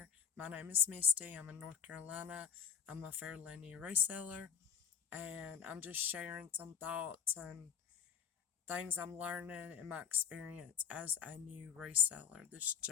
My name is Misty. I'm in North Carolina. I'm a fairly new reseller, and I'm just sharing some thoughts and things I'm learning in my experience as a new reseller, this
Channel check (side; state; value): right; quieter; 7.3 dB